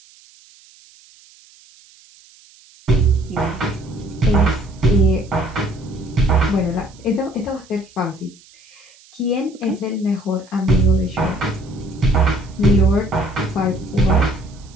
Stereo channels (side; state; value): right; noise; hiss, 26 dB below the sound